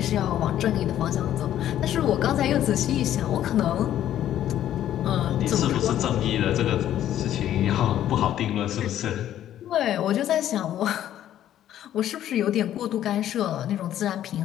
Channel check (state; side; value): quieter; right; 11.6 dB